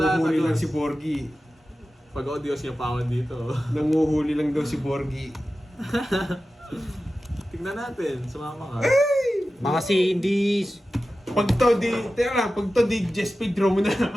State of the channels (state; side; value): normal; both; correlation 0.94